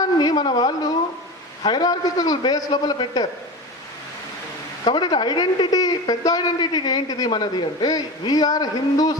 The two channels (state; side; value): normal; both; correlation 0.28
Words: మన వాళ్ళు హైరార్కికల్ బేస్ లోపల పెట్టారు. కాబట్టి ఐడెంటిటీ, పెద్ద ఐడెంటిటీ ఏంటిది మనది అంటే వీఆర్ హిందూస్